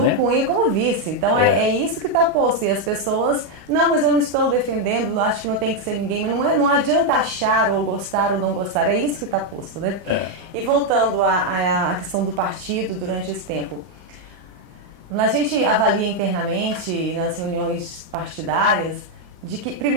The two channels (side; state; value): left; late; 34 ms